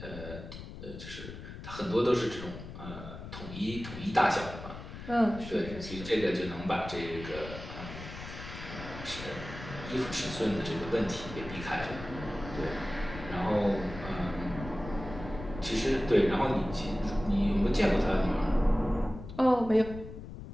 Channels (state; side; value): noise; left; rumble, 11 dB below the sound